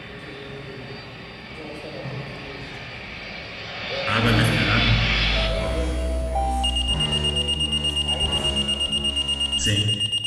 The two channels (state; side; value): identical; both; correlation 1.00